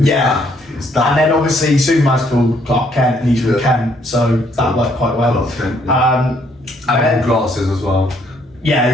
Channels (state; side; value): normal; both; correlation 0.68